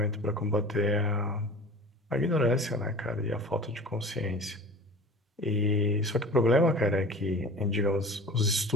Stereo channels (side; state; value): both; normal; correlation 0.39